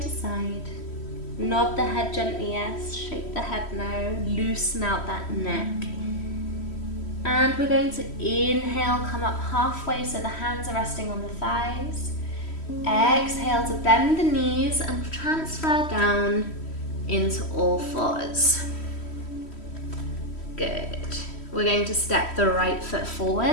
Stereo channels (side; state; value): right; late; 3.1 ms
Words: to side. Nod the head gently, yes. Shake the head no. Loosen out that neck. And we're going to inhale, come up halfway so the hands are resting on the thighs. Exhale to bend the knees and transfer down into all fours. Good. We're going to step the right foot